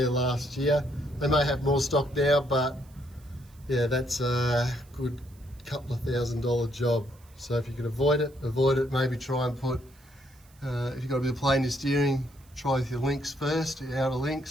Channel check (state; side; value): noise; right; hiss, 29 dB below the sound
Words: last year. They may have more stock now, but yeah, that's a good couple of $1,000 job. So if you can avoid it, maybe try and put, if you've got a bit of play in your steering, try with your links first, your outer